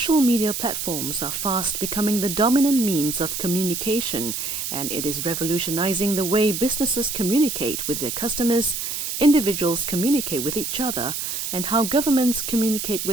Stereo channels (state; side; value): noise; right; hiss, 4 dB below the sound